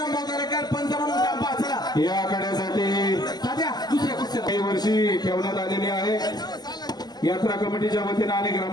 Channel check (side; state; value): right; late; 0.20 ms